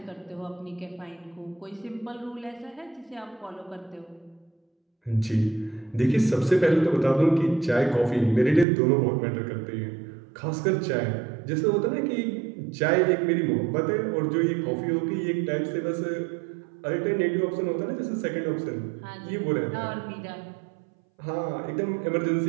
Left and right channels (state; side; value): drops out; left; at 8.7 s